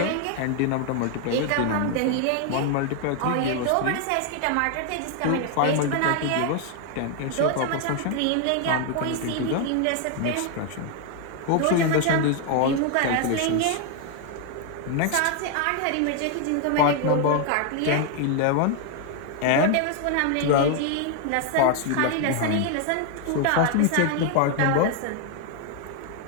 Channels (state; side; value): different; both; correlation 0.00